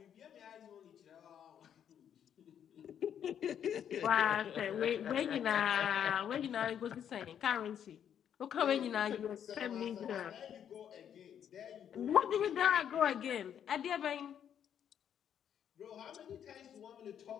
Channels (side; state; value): right; quieter; 9.1 dB